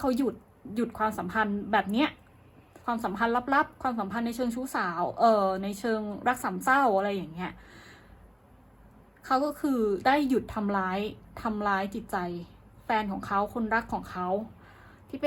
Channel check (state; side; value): identical; both; correlation 1.00